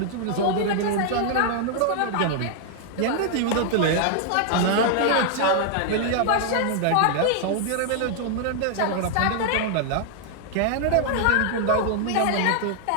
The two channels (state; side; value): different; both; correlation 0.00